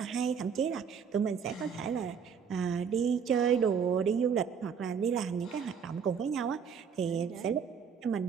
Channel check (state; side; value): quieter; left; 6.8 dB